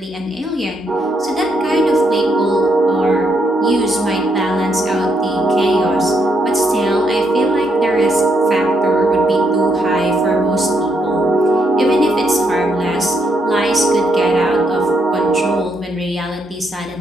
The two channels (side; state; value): both; normal; correlation 0.76